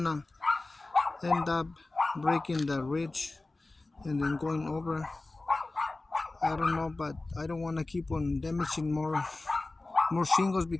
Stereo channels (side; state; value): right; quieter; 3.1 dB